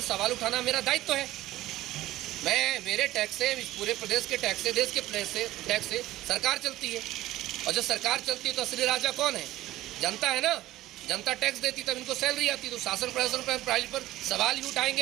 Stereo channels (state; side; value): quieter; left; 15.8 dB